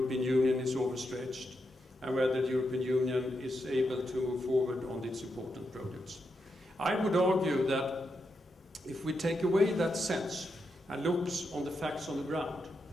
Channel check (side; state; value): both; normal; correlation 0.84